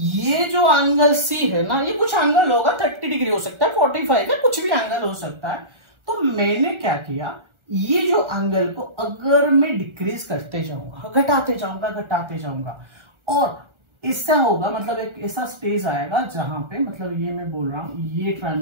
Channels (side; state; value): left; late; 1.4 ms